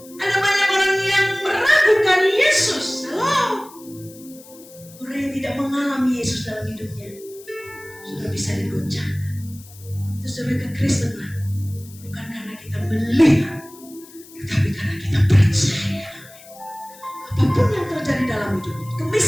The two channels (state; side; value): noise; left; hiss, 21 dB below the sound